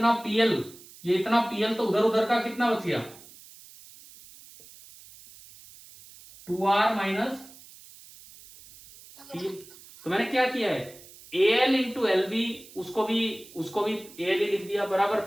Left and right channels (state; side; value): noise; right; hiss, 21 dB below the sound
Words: PL तो उधर उधर का कितना बच गया? 2R minus PL। तो मैंने क्या किया है, AL इंटू LB उसको भी AL ही लिख दिया, बराबर